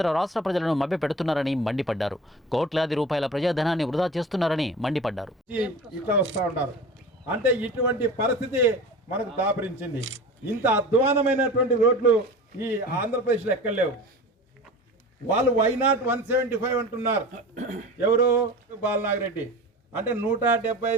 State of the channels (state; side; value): normal; both; correlation 0.35